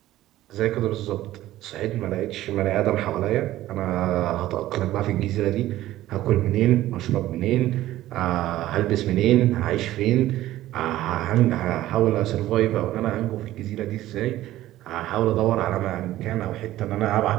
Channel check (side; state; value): left; quieter; 14.8 dB